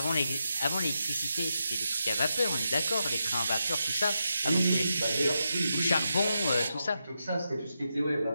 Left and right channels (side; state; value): both; inverted; correlation -0.86